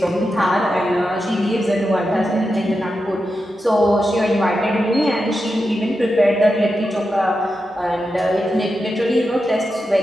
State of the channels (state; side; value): normal; both; correlation 0.89